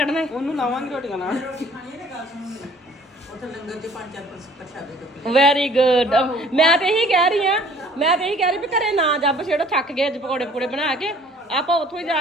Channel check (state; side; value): normal; both; correlation 0.54